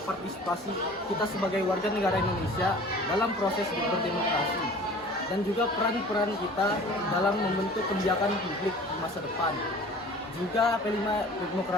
kita sebagai warga negara Indonesia dalam proses berdemokrasi dan juga peran-peran kita dalam membentuk kebijakan publik di masa depan. Juga P5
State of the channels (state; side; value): normal; both; correlation 0.45